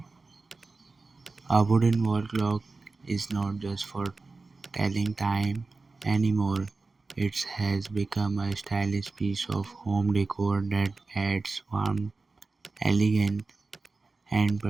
A wooden wall clock is not just for telling time anymore. It has become a stylish piece of home decor that adds warmth, elegance, and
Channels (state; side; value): quieter; left; 3.8 dB